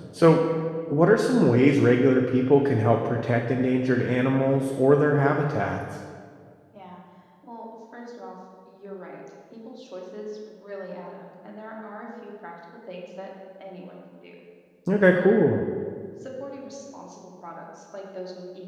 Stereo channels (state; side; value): identical; both; correlation 1.00